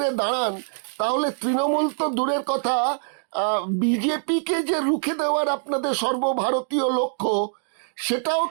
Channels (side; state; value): left; silent; digital silence